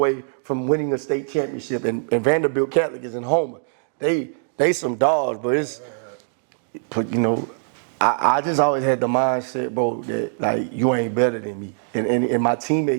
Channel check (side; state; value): left; silent; digital silence